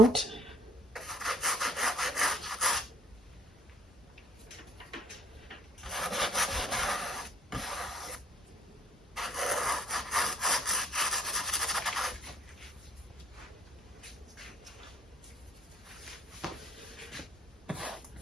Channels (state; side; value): normal; both; correlation 0.60